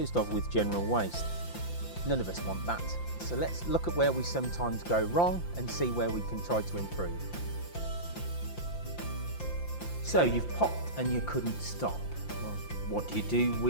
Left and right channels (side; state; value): right; late; 5.8 ms